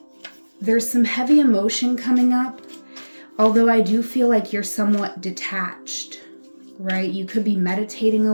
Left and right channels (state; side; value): inverted; both; correlation -1.00